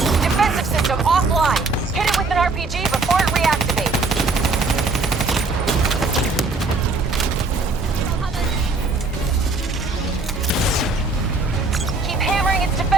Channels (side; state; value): left; quieter; 3.7 dB